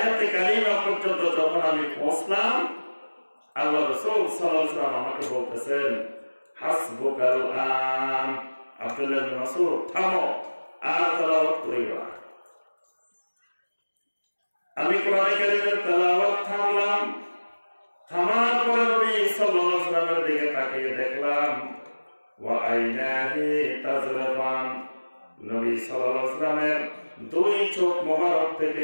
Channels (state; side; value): inverted; both; correlation -1.00